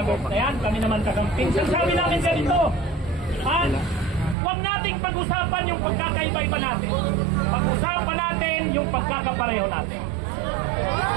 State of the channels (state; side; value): drops out; left; at 4.4 s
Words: na yan. Kami naman kagamping. Sabi namin ganito. Huwag nating pag-usapan yung pagkakaiba-iba natin. Pag-usapan natin yung pagkakapareho natin.